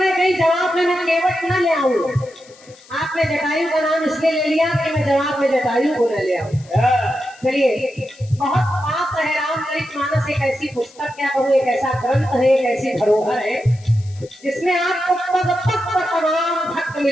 हैं कहीं जवाब में मैं केवट न ले आऊं। आपने जटायु का नाम इसलिए ले लिया कि मैं जवाब में जटायु को न ले आऊं। चलिए बहुत पाप है, रामचरितमानस एक ऐसी पुस्तक, क्या कहूँ, एक ऐसा ग्रंथ है, एक ऐसी धरोहर है जिसमें आपको पग पग पर तमाम भक्त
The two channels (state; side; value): noise; left; hiss, 25 dB below the sound